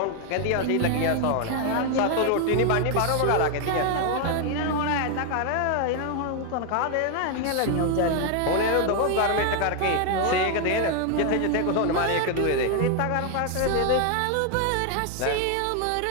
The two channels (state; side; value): different; both; correlation 0.00